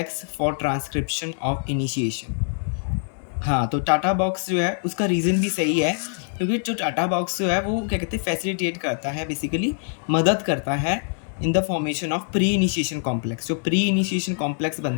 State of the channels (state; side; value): silent; right; 57 dB below the other